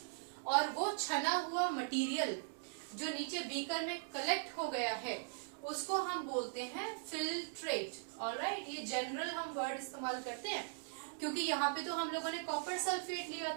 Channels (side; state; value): left; silent; digital silence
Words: और वो छना हुआ मटेरियल जो नीचे बीकर में कलेक्ट हो गया है उसको हम बोलते हैं फिल्ट्रेट। ऑलराइट, ये जनरल हम वर्ड इस्तेमाल करते हैं क्योंकि यहाँ पे तो हम लोगों ने कॉपर सल्फेट लिया